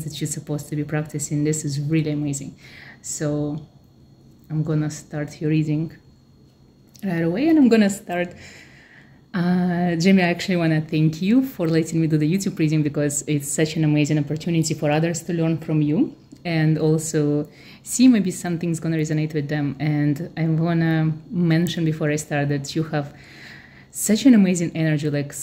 that you're supposed to be practicing. This is really amazing. So I'm gonna start your reading right away, and I'm gonna start. Jamie, I actually want to thank you for letting me do the YouTube reading because it's such an amazing opportunity for others to learn from you and also see maybe something's gonna resonate with them. And I wanna mention before I start that you have such an amazing energy, like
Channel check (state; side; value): identical; both; correlation 1.00